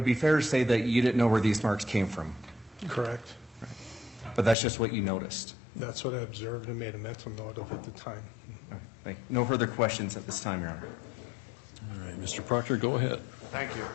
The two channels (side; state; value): right; drops out; at 4.5 s